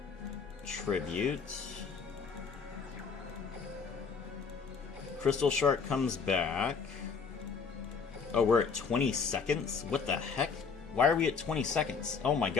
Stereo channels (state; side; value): quieter; right; 5.6 dB